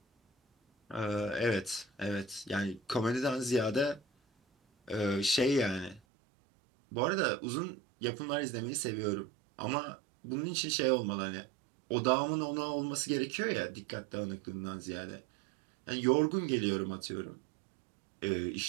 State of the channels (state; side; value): drops out; left; at 6.0 s